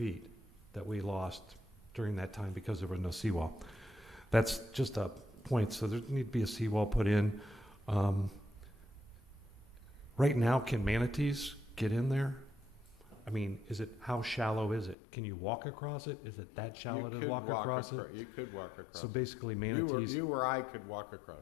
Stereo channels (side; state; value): right; drops out; at 15.0 s